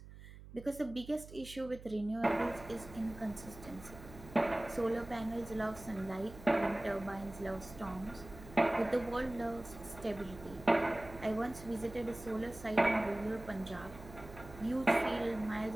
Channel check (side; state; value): right; noise; hum, 16 dB below the sound